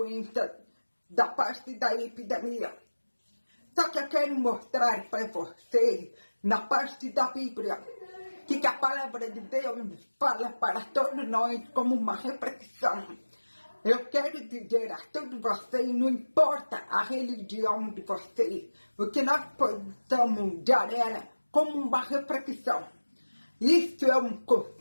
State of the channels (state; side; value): inverted; both; correlation -1.00